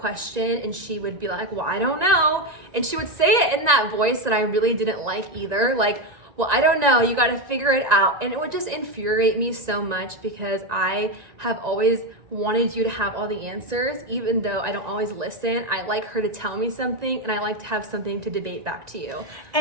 and she would be like, well, I don't know. And she would say it in that voice that I really didn't like either. Like, well, I don't know, you got to figure it out. And it would just infuriate me so much because I have always wanted you to have all the answers, even though I don't always listen. I like her to tell me something and I like to have something to debate back to you.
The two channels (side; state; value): left; late; 1.9 ms